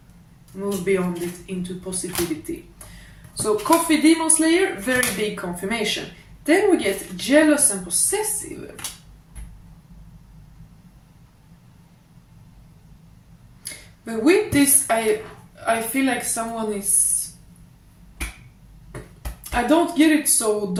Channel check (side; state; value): both; identical; correlation 1.00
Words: move beyond it into positivity. So Coffee, Demon Slayer, very big confirmation. Then we get jealous and possessive. But with this, I feel like someone is... I don't get it so